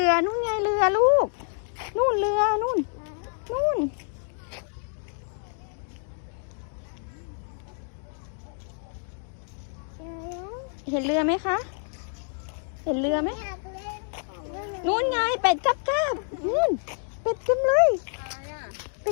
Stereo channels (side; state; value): right; silent; 60 dB below the other